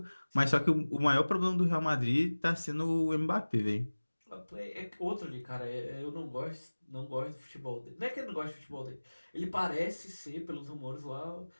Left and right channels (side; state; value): both; inverted; correlation -1.00